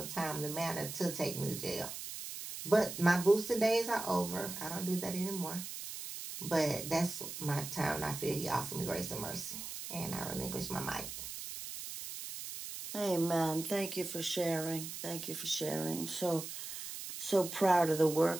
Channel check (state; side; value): noise; right; hiss, 8 dB below the sound